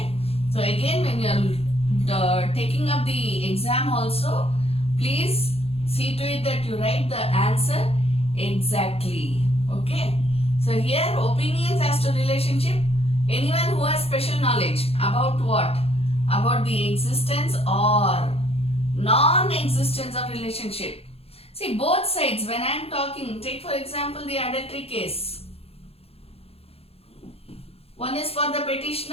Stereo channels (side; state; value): right; late; 0.29 ms